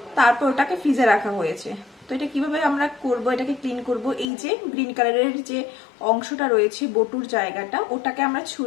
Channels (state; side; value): drops out; right; at 4.3 s